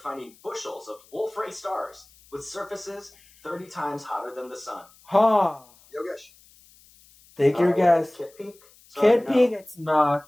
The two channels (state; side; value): noise; left; hiss, 27 dB below the sound